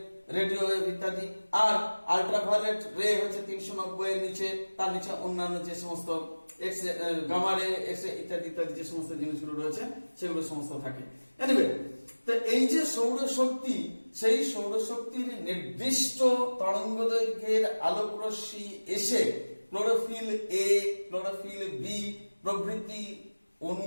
রেডিও ওয়েভ ইত্যাদি, আর আল্ট্রাভায়োলেট রে হচ্ছে 390 এর নিচে, তার নিচে অন্যান্য যে সমস্ত এক্স গামা রে, এক্স ইত্যাদি ইত্যাদি যে সমস্ত জিনিসগুলো রয়েছে সেগুলো সমস্ত থাকে। এনিওয়ে, তো এই যে সৌরশক্তি, সেই সৌরশক্তির নির্দিষ্ট তরঙ্গ দৈর্ঘ্যের আলোক রশ্মি এসে ক্লোরোফিল এ, ক্লোরোফিল বি প্রভৃতি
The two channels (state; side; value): inverted; both; correlation -1.00